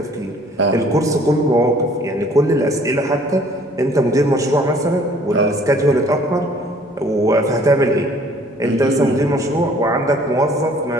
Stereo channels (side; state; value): both; normal; correlation 0.56